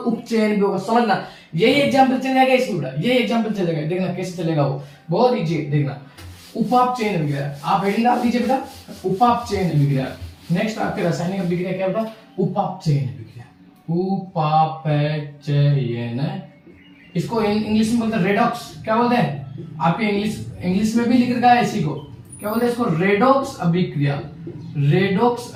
उपचयन भी होगा। समझना, यही एग्जाम्पल चलेगा इसमें बेटा, ये एग्जाम्पल चलेगा, देखना कैसे चलेगा वो, बहुत इजी है, देखना। उपापचयन अभिक्रिया, आप हेडिंग डाल दीजिए बेटा, उपापचयन अभिक्रिया। नेक्स्ट आपके रासायनिक अभिक्रिया क्या बेटा, उपापचयन अभिक्रिया, उपापचयन। इसको इंग्लिश में बोलते हैं रेडॉक्स। क्या बोलते हैं, आपके इंग्लिश में भी लिख रखा है इसी को, क्या बोलते हैं इसको, रेडॉक्स अभिक्रिया, रेडॉक्स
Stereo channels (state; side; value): identical; both; correlation 1.00